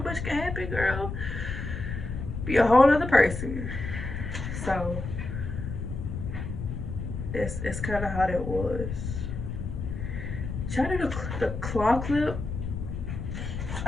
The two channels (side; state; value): left; noise; rumble, 5 dB below the sound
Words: much can happen, girl. Be a whole other person. So that's kind of how that was. Try to do the claw clip.